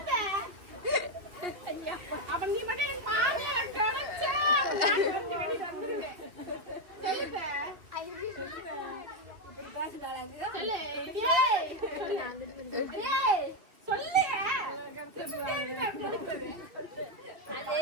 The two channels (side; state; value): left; late; 2.3 ms